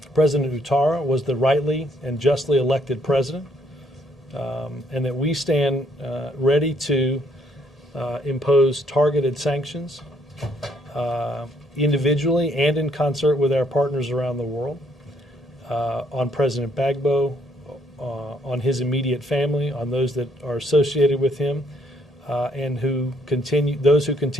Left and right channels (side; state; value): both; normal; correlation 0.69